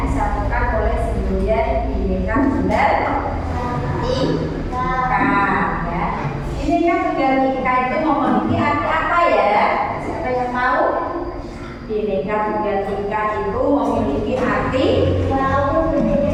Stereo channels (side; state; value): both; identical; correlation 1.00